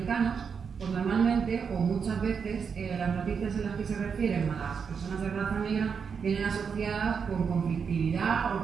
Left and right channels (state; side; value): quieter; left; 6.3 dB